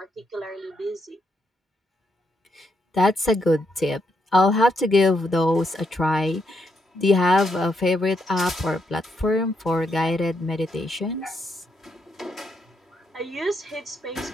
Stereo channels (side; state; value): both; normal; correlation 0.79